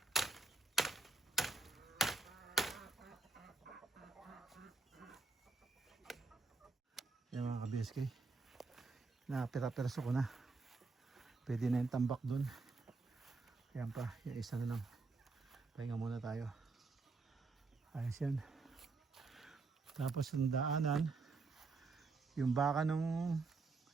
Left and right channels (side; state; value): left; quieter; 3.9 dB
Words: Yan mga ka-BSK, napira-perso ko na, pwede na yung tambak dun. Yan pa, yung isa na lang, pahinga muna tayo. Ayos yan. Tapos yung daanan, yung baka